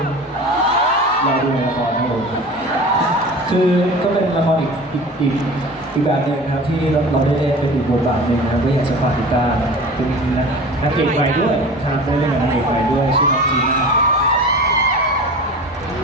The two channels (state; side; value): normal; both; correlation 0.37